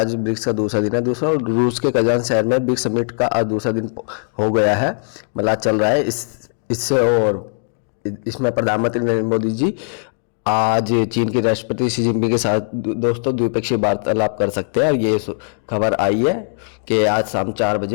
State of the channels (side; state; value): right; silent; digital silence